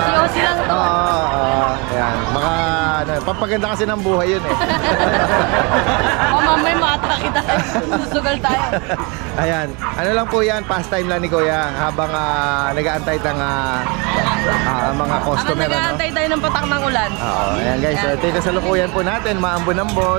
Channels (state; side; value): quieter; left; 30.1 dB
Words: Siyosi lang to. Oo, ayan. Papaganda kasi ng buhay yun eh. Mamay matak kita. Susugal tayo. Ayan. Ano lang po yan, pastime lang ni Kuya habang nag-aantay ng mga customer. Habang nag-aantay tayo ng patak ng ulan. Oo, ayan guys. So, ito yung kasalukuyan po natin,